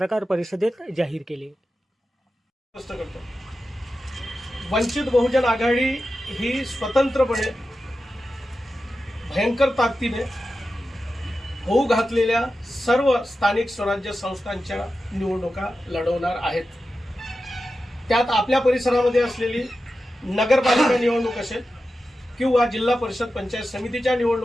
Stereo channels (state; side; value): normal; both; correlation 0.92